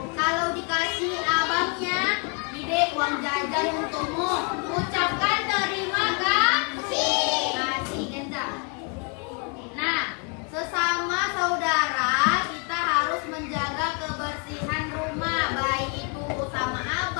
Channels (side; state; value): right; quieter; 35.3 dB